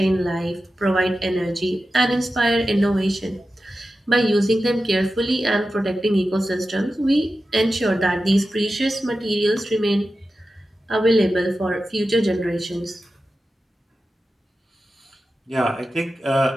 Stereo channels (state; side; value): normal; both; correlation 0.93